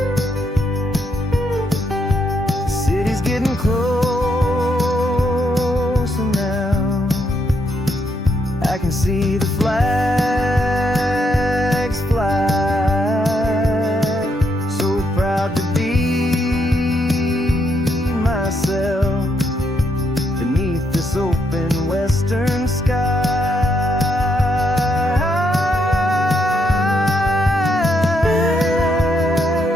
getting close, and now I can see the flags fly. So proud to be myself beneath this open western sky.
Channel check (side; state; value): both; normal; correlation 0.77